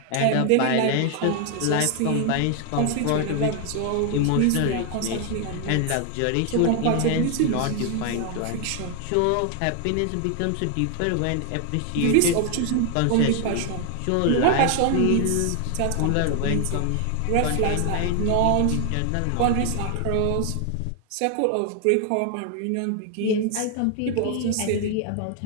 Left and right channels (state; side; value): different; both; correlation 0.00